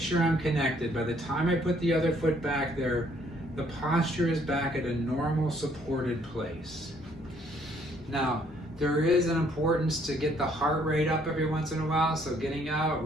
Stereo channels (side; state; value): both; normal; correlation 0.65